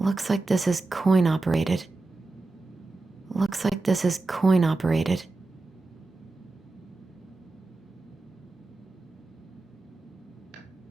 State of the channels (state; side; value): quieter; left; 3.3 dB